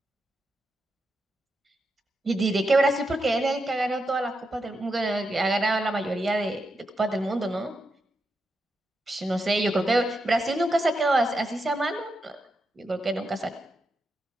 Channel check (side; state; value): both; normal; correlation 0.85